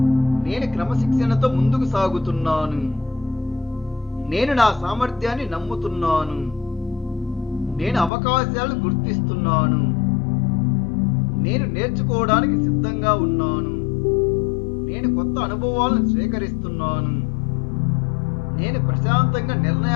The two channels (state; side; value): drops out; right; at 8.1 s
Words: నేను క్రమశిక్షణతో ముందుకు సాగుతున్నాను, నేను నా సామర్థ్యాన్ని నమ్ముతున్నాను, నేను అవకాశాలను గుర్తిస్తున్నాను, నేను నేర్చుకోవడానికి సిద్ధంగా ఉన్నాను, నేను కొత్త అనుభవాలను స్వీకరిస్తున్నాను, నేను ప్రశాంతంగా